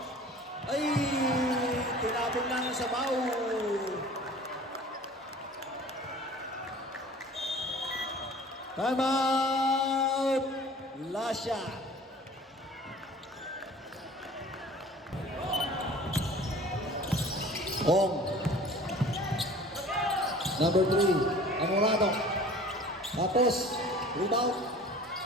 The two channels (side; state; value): both; normal; correlation 0.45